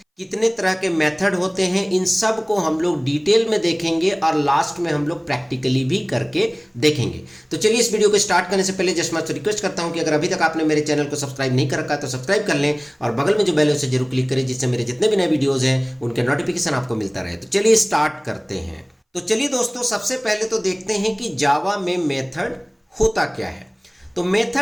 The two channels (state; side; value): identical; both; correlation 1.00